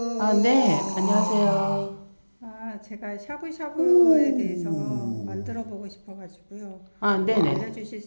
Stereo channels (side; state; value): both; inverted; correlation -1.00